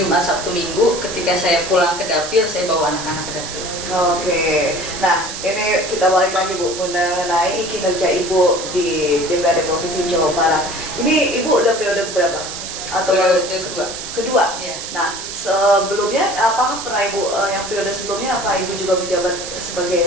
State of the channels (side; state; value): right; noise; hiss, 8 dB below the sound